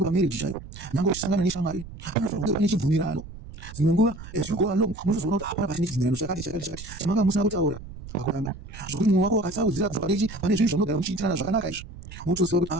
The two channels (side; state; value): right; noise; rumble, 14 dB below the sound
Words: pamarriage chaipo, nyangwe uchisangana neshamwari, panofanirwa kunge pane chibvumirano. Dzimwe nguva as you go along munozoona kuti hapana pachine chibvumirano chakati chamanga musina kutaura pakuramba. Zvokuti mwoyo wako wakasaudzira kubva pane zvinhu zvamunogara muchiitirana zvakanaka izvi, munotoziva kuti